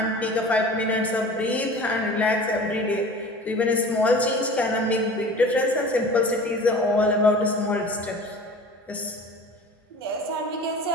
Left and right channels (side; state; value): both; normal; correlation 0.40